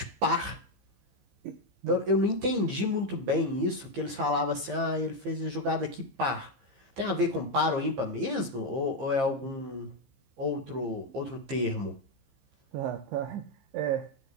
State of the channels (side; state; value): left; late; 15 ms